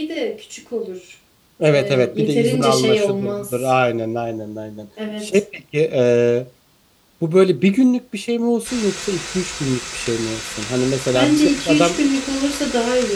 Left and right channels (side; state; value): both; identical; correlation 1.00